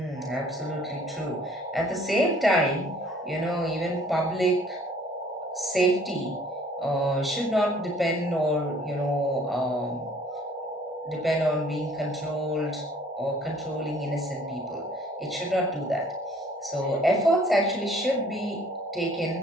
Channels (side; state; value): both; normal; correlation 0.56